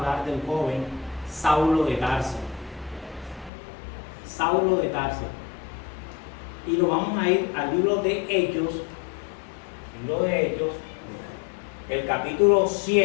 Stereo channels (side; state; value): right; drops out; at 3.5 s